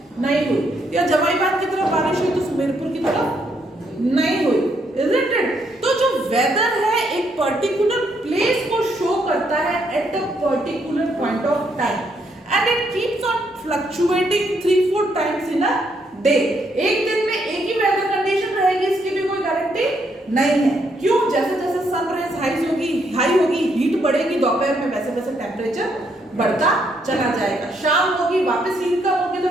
नहीं हुई, या जमाईबाग की तरफ बारिश हुई तो सुमेरपुर की तरफ नहीं हुई. Isn't it? तो जो वेदर है एक पर्टिकुलर प्लेस को शो करता है at a particular point of time and it keeps on fluctuating 3-4 times in a day. एक दिन में एक ही वेदर कंडीशन रहेगी इसकी भी कोई गारंटी नहीं है. क्यों? जैसे जैसे सनराइज हाई होगी हीट बढ़ेगी, दोपहर में वैसे वैसे टेम्परेचर बढ़ता चला जाएगा. शाम होगी वापस हीट कम होगी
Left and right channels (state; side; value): normal; both; correlation 0.74